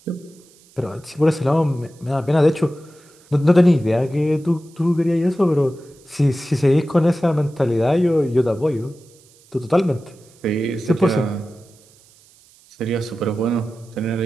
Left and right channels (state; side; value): noise; right; hiss, 29 dB below the sound